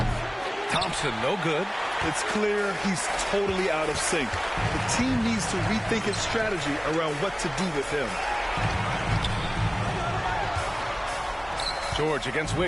Thompson, no good. It's clear he's totally out of sync. The team needs to rethink its strategy around what to do with him. George against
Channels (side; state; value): both; identical; correlation 1.00